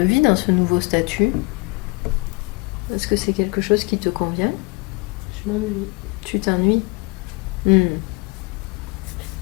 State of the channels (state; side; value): quieter; right; 27.1 dB